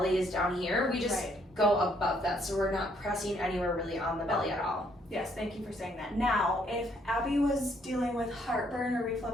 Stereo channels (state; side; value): normal; both; correlation 0.69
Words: is down here, we just Right. go above that. So we're not pressing anywhere really on the belly at all. Yes, thank you for saying that. Now, if Abby was dealing with heartburn or